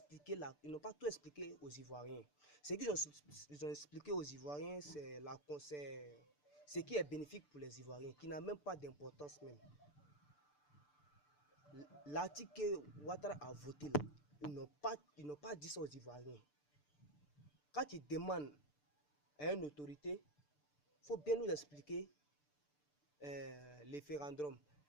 là, ils n'ont pas tout expliqué aux Ivoiriens. Ce qu'ils ont expliqué aux Ivoiriens, c'est ce qui est bénéfique pour les Ivoiriens, qui n'a même pas d'importance même. L'article que Ouattara a voté là, ils n'ont pas dit ça aux Ivoiriens. Quand ils demandent à une autorité, il faut bien nous expliquer les référendums,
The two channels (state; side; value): late; right; 6.8 ms